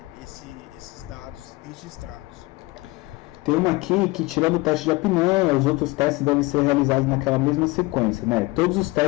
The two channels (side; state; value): right; quieter; 22.4 dB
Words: esses dados registrados. Tem uma aqui que, tirando o teste de apneia, os outros testes devem ser realizados naquela mesma sequência, né? Todos os